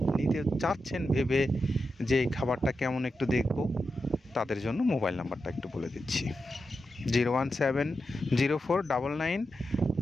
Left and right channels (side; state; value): both; normal; correlation 0.89